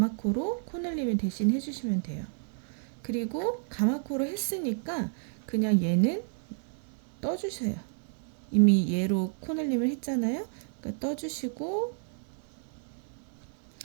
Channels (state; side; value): silent; left; 57 dB below the other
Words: 코늘림을 대신 해주시면 돼요. 그리고 가마코로 했으니까 그냥 얘는 떠주세요. 이미 얘로 코늘림을 했잖아요. 그러니까 떠주시고